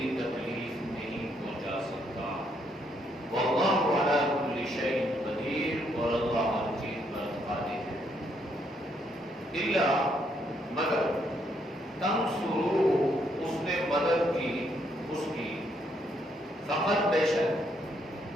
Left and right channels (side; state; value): both; normal; correlation 0.73